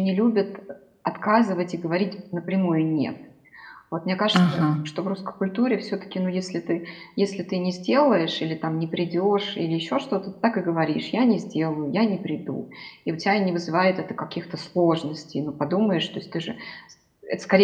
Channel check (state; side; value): identical; both; correlation 1.00